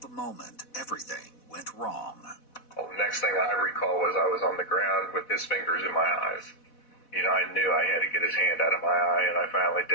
moment everything went wrong. Well, the next thing I recall was I was on the ground with his fingers in my eyes. You know, I knew I had to get his hand out of my eye, and I finally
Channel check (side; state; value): right; late; 4.1 ms